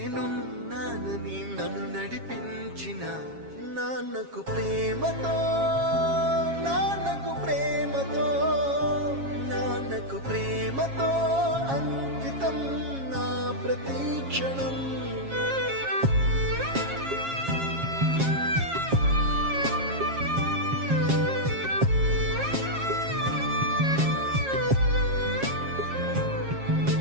నన్ను నడిపించిన నాన్నకు ప్రేమతో, నాన్నకు ప్రేమతో, నాన్నకు ప్రేమతో అంకితం నా ప్రతి క్షణం.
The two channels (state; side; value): late; left; 7.4 ms